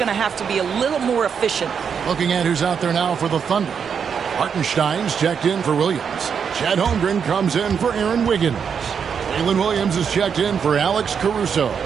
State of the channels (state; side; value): quieter; left; 6.9 dB